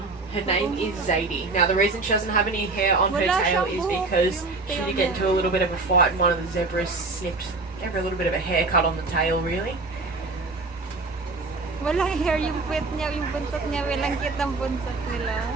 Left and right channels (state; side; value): quieter; left; 3.6 dB